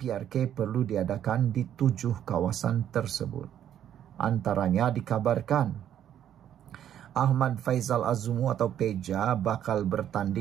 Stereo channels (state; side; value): quieter; left; 10.3 dB